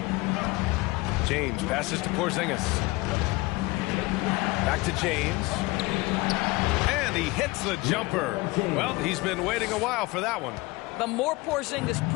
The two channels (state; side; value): quieter; right; 22.4 dB